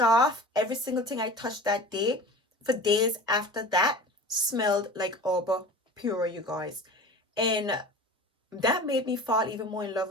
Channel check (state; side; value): normal; both; correlation 0.37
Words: every single thing I touched that day for days after that smelled like Aura Pura, you guys. And that made me fall even more in love